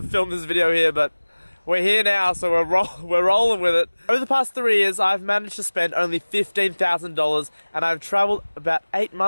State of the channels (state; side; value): inverted; both; correlation -1.00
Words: film this video here, but we're here now, so we're rolling with it. Over the past 3 years, I've managed to spend only $15,000, and I've traveled about 8